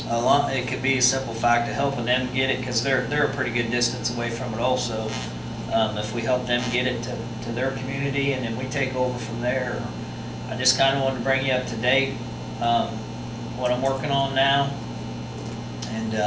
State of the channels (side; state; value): both; identical; correlation 1.00